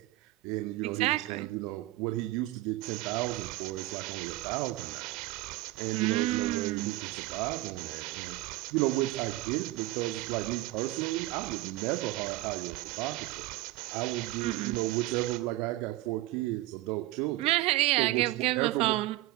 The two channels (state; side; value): quieter; left; 17.9 dB